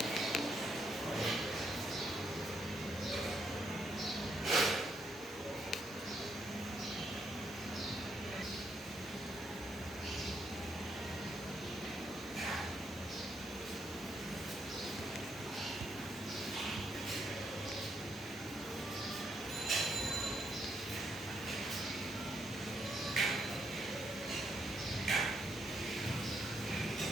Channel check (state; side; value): normal; both; correlation 0.76